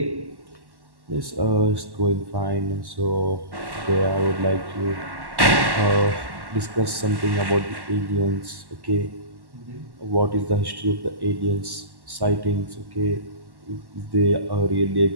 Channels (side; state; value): left; late; 1.1 ms